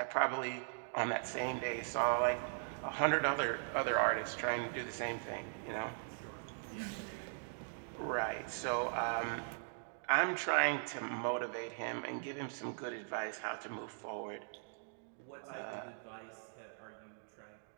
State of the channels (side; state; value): left; silent; digital silence